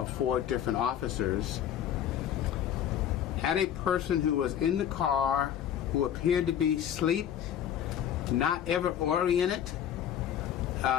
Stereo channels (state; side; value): quieter; right; 9.9 dB